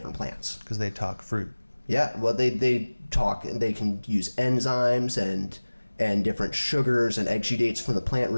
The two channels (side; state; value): both; inverted; correlation -1.00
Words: plants. Because they talk fruit. Yeah, well, they talk, and they can use enzymes and different sugars and exudates from the plant